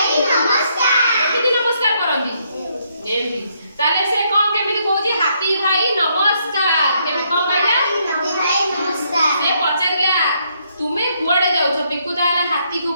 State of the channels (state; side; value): inverted; both; correlation -0.73